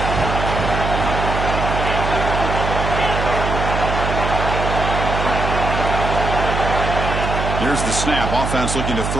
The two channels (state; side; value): noise; right; hum, 3 dB below the sound